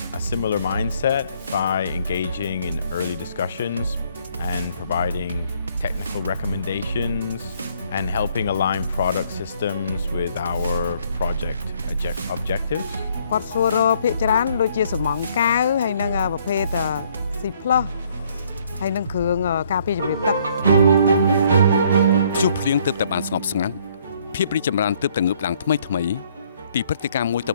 a similar mindset by engaging in early discussions and providing technical recommendations and helping align product systems with our project objectives. គាត់សួរភាគច្រើនដូចជាសំងកាវហើយនឹងប្រភេទ C+ ហើយនឹងគ្រឿងការពារជំរាបទឹក ព្យុះភ្លៀងទើបតែបានស្ងប់ស្ងាត់ភាពរីកចម្រើនទើបតែងើបឡើងថ្មីពីព្រឹត្តិការណ៍មួយទៅ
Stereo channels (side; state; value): both; inverted; correlation -0.65